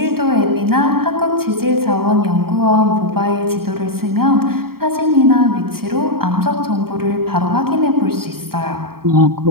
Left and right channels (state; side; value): late; left; 0.94 ms